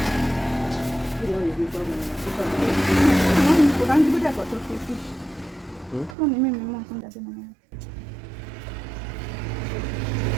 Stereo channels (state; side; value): drops out; left; at 6.2 s